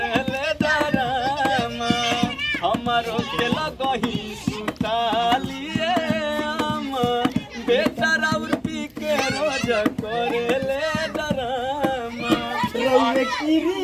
डराम हमारो के लगही सुतालिए हम बेटा राउर पी के रोज करले डराम रउए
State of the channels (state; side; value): identical; both; correlation 1.00